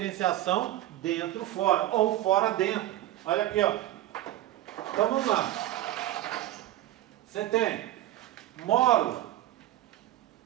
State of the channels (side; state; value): left; quieter; 14.2 dB